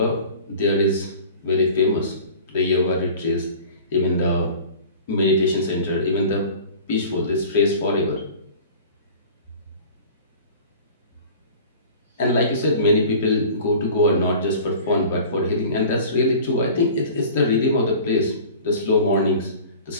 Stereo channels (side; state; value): both; inverted; correlation -0.43